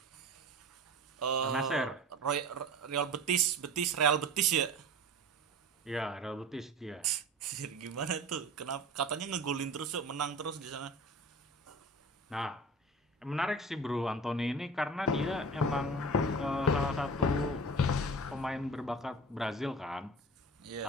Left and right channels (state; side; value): normal; both; correlation 0.35